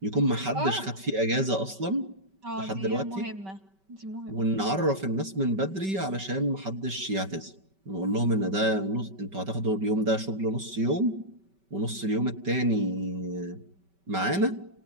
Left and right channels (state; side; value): late; left; 5.2 ms